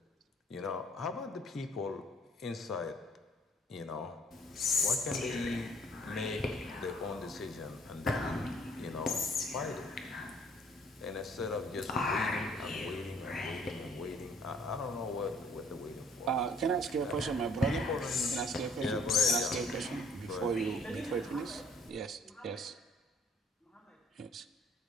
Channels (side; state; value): both; normal; correlation 0.59